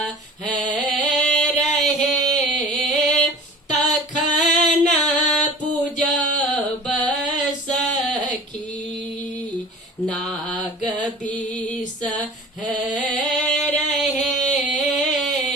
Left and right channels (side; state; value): both; normal; correlation 0.40